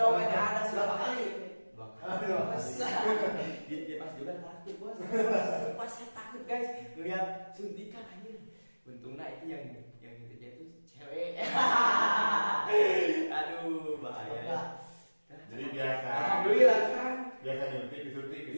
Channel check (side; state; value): both; inverted; correlation -1.00